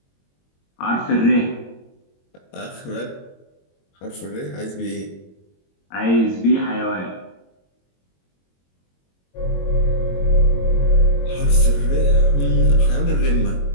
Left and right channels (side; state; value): right; late; 22 ms